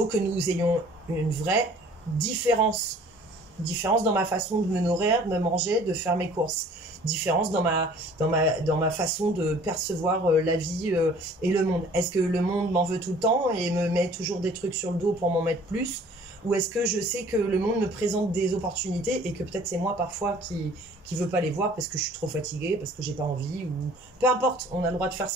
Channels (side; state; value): both; normal; correlation 0.52